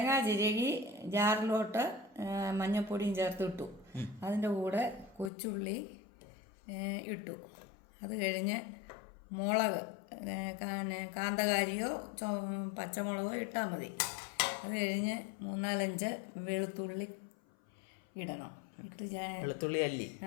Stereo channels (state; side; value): drops out; right; at 5.3 s